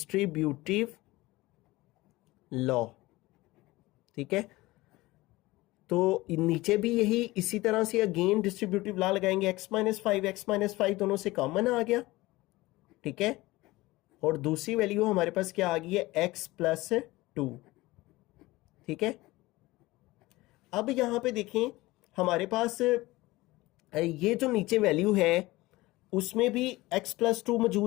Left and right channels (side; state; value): right; quieter; 19.7 dB